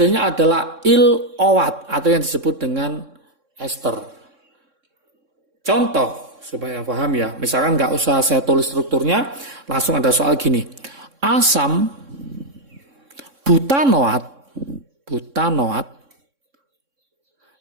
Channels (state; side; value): late; left; 3.6 ms